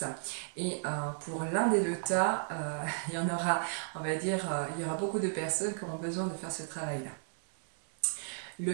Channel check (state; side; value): silent; left; digital silence